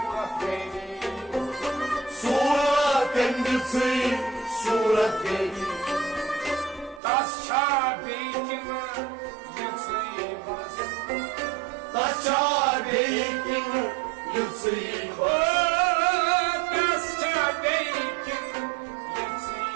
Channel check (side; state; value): left; drops out; at 7.0 s